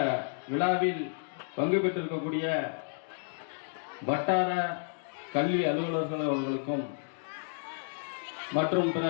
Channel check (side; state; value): right; silent; digital silence